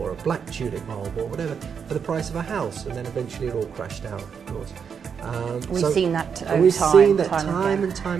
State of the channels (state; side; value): quieter; left; 6.8 dB